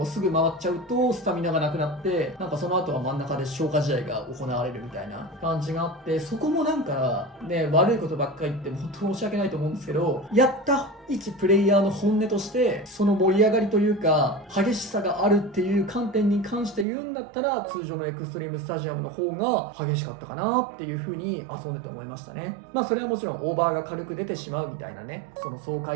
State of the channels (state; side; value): drops out; left; at 16.9 s